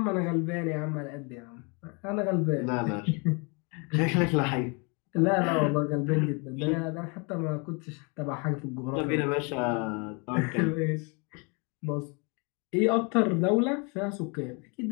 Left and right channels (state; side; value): quieter; right; 32.5 dB